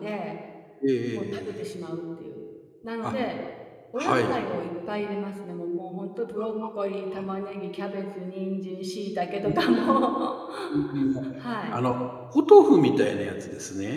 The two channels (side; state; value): both; identical; correlation 1.00